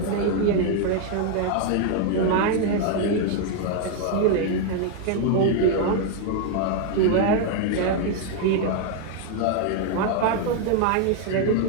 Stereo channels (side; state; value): both; different; correlation 0.00